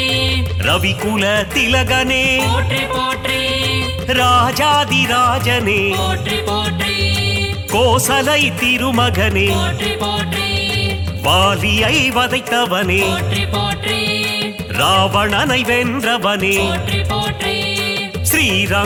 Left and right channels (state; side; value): identical; both; correlation 1.00